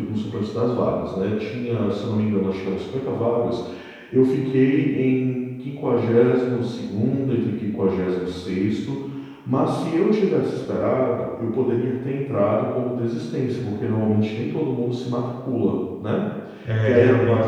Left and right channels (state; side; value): identical; both; correlation 1.00